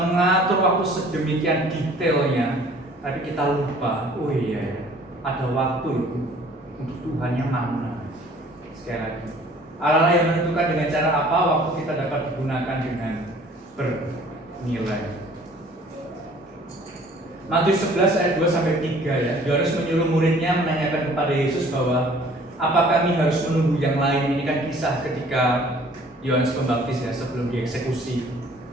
waktu sedemikian detailnya, tapi kita lupa, oh iya ada waktu itu untuk Tuhan yang mana. Sekali lagi, Allah yang menentukan dengan cara apa waktu kita dapat digunakan dengan bernilai. Matius 11 ayat 2-3 ya. Yohanes menyuruh muridnya menanyakan kepada Yesus bahwa apa kami harus menunggu yang lain. Ini kan kisah ketika Yohanes Pembaptis ya sebelum dieksekusi,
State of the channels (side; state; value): both; normal; correlation 0.53